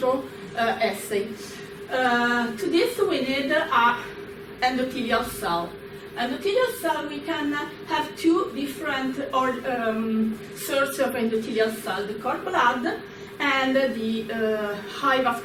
assay. To this we need an endothelial cell. Endothelial cell, we can have two different sources of endothelial cell, the cord blood and the high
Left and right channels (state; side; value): identical; both; correlation 1.00